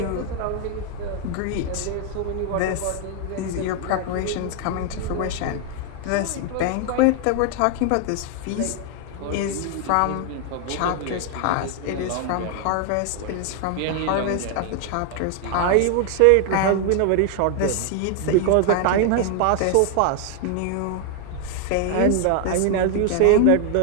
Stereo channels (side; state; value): both; different; correlation 0.00